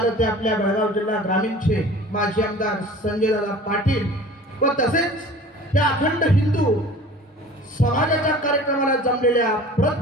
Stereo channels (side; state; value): both; normal; correlation 0.43